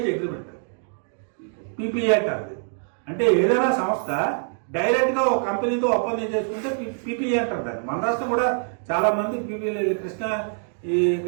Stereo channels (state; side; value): silent; left; 62 dB below the other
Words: అగ్రిమెంట్. పీపీఏ అంటారు. అంటే ఏదైనా సంస్థ డైరెక్ట్ గా ఒక కంపెనీతో ఒప్పందం చేసుకుంటే పీపీఏ అంటారు దాన్ని. మన రాష్ట్రం కూడా చాలా మంది పీపీఏ,